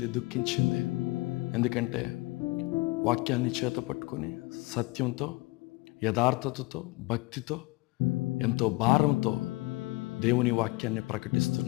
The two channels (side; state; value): right; quieter; 23.1 dB